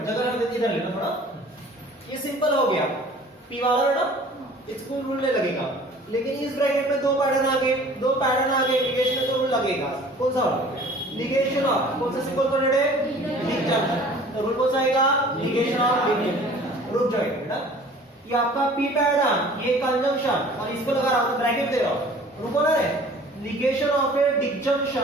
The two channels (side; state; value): both; normal; correlation 0.48